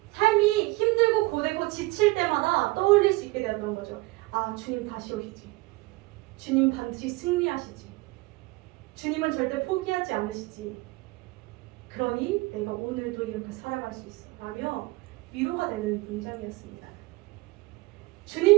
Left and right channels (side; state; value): left; quieter; 22.0 dB